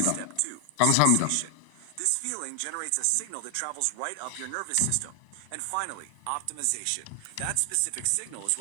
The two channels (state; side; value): different; both; correlation 0.00